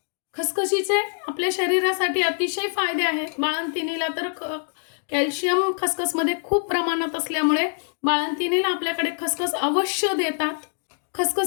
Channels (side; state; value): right; silent; 59 dB below the other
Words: खसखशीचे आपल्या शरीरासाठी अतिशय फायदे आहेत. बाळंतिणीला तर कॅल्शियम खसखसमध्ये खूप प्रमाणात असल्यामुळे बाळंतिणीला आपल्याकडे खसखस अवश्य देतात.